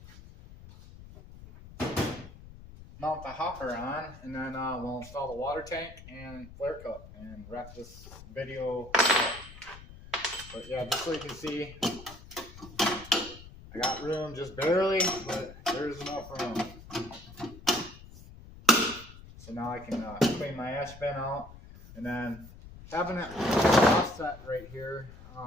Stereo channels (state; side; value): noise; left; rumble, 17 dB below the sound